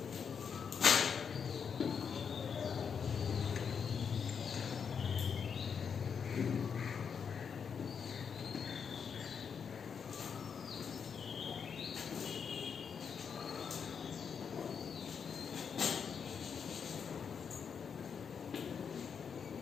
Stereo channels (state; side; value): quieter; right; 6.7 dB